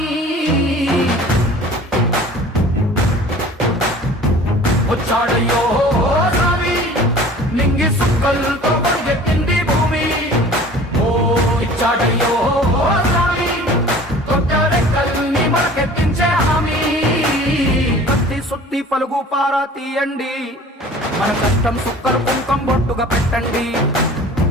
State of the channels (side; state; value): both; normal; correlation 0.45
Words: వచ్చాడయ్యో స్వామి నింగి సుక్కలతో గొడుగెత్తింది భూమి ఓ ఇచ్చాడయ్యో స్వామి కొత్త రెక్కల్ని మొలకెత్తించే హామీ కత్తి సుత్తి పలుగు పారా తీయండి మన కష్టం సుక్కలు కుంకం బొట్టుగా పెట్టండి